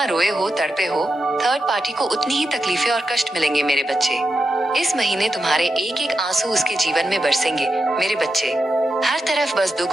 रोए हो, तड़पे हो, थर्ड पार्टी को उतनी ही तकलीफें और कष्ट मिलेंगे मेरे बच्चे। इस महीने तुम्हारे एक एक आंसू उसके जीवन में बरसेंगे मेरे बच्चे। हर तरफ बस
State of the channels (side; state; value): both; normal; correlation 0.88